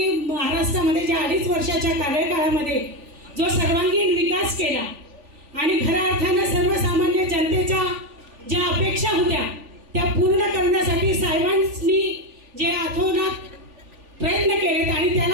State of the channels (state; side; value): late; left; 3.4 ms